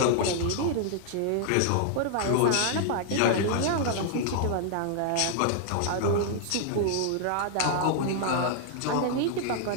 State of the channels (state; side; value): different; both; correlation -0.01